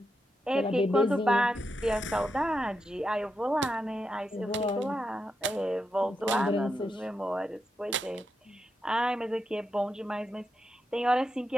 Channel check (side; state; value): both; normal; correlation 0.85